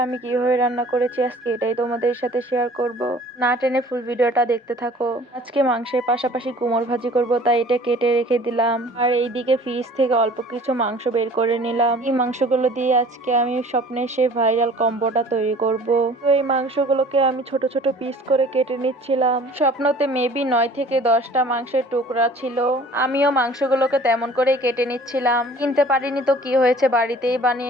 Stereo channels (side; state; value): both; normal; correlation 0.49